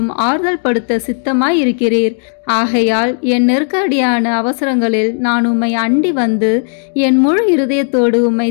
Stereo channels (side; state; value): right; silent; 71 dB below the other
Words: ஆறுதல் படுத்த சித்தமாய் இருக்கிறீர். ஆகையால் என் நெருக்கடியான அவசரங்களில் நான் உம்மை அண்டி வந்து என் முழு இருதயத்தோடு உம்மை